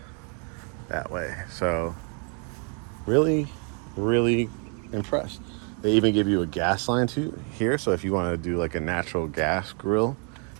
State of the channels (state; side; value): quieter; left; 38.6 dB